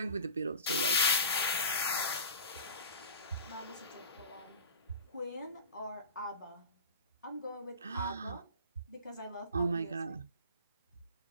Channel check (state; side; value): inverted; both; correlation -0.34